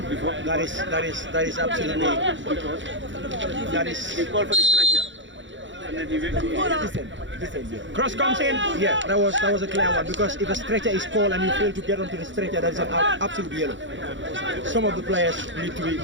is absolutely. That is. They call for the stretcher. Cross comes in. Yeah, that was a clear one, because if a stretcher is called and you fail to get onto the stretcher, that is an absolute yellow. Some of the players need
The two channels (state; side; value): late; left; 0.54 ms